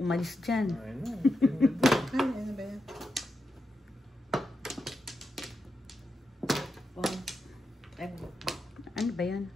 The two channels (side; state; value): both; normal; correlation 0.87